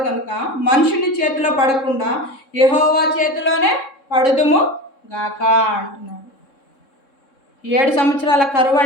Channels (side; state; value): right; late; 3.6 ms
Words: కనుక మనుషుని చేతిలో పడకుండా యెహోవా చేతిలోనే పడుదుము గాక అంటున్నాడు. 7 సంవత్సరాల కరువు